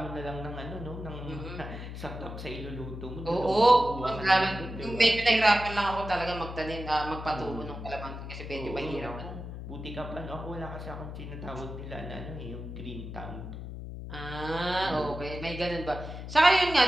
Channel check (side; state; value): left; noise; hum, 9 dB below the sound